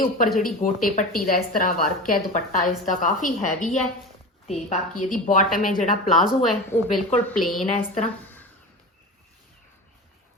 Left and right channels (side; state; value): both; normal; correlation 0.29